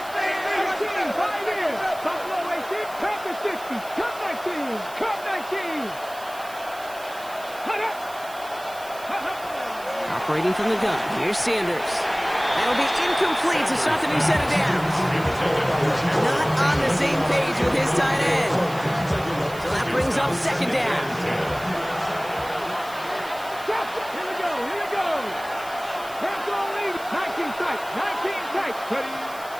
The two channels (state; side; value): noise; right; hiss, 18 dB below the sound